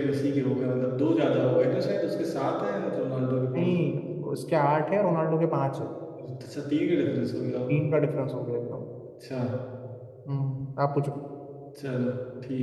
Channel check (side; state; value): both; identical; correlation 1.00